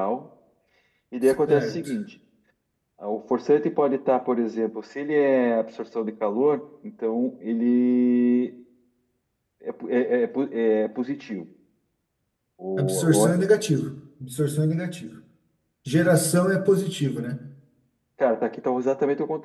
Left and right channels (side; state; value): both; identical; correlation 1.00